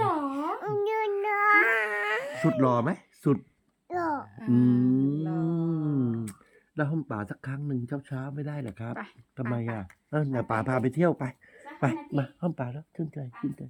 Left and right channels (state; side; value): identical; both; correlation 1.00